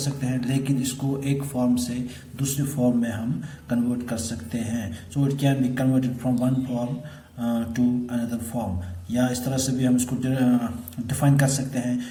हैं, लेकिन इसको एक फॉर्म से दूसरी फॉर्म में हम कन्वर्ट कर सकते हैं। So it can be converted from one form to another form, या इस तरह से भी हम इसको डिफाइन कर सकते हैं।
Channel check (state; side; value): identical; both; correlation 1.00